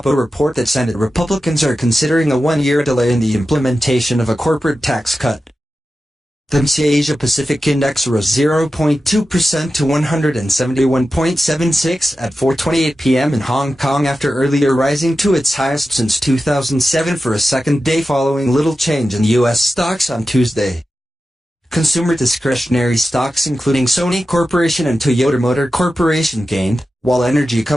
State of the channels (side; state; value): both; normal; correlation 0.92